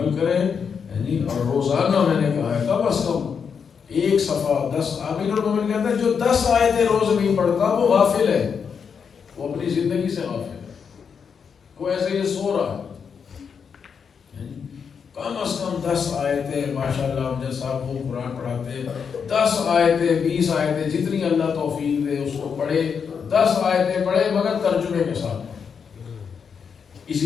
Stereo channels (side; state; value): right; quieter; 6.5 dB